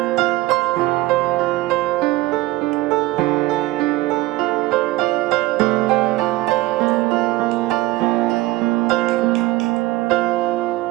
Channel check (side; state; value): left; quieter; 18.5 dB